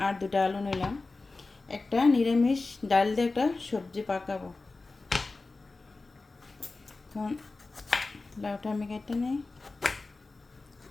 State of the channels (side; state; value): right; quieter; 3.6 dB